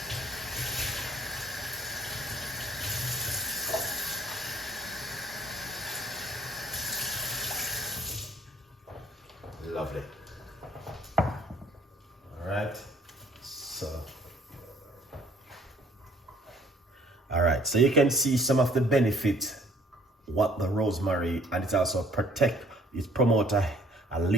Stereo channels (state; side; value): normal; both; correlation 0.59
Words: lovely. All right, so you can see some of the benefit what the rosemary, and it's also protect, it promote a